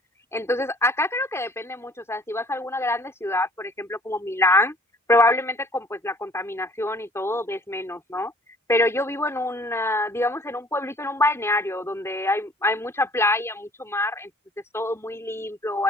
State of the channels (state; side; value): normal; both; correlation 0.54